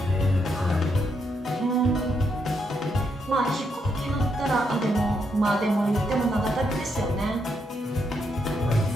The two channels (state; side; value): normal; both; correlation 0.78